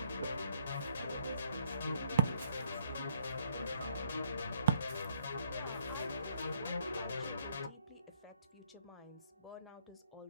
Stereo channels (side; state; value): both; inverted; correlation -0.67